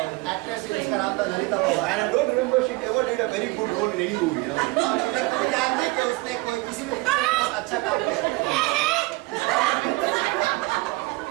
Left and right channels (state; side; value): quieter; left; 23.3 dB